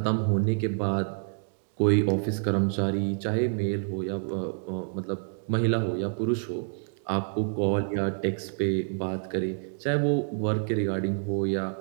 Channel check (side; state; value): left; silent; digital silence